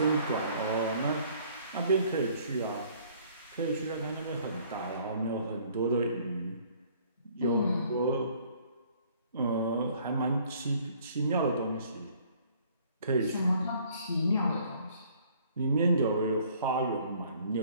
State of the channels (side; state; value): both; inverted; correlation -0.58